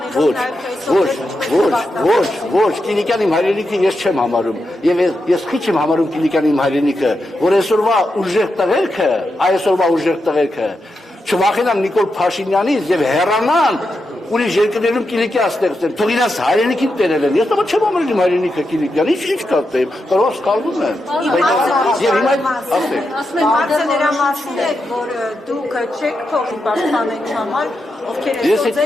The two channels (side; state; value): both; normal; correlation 0.86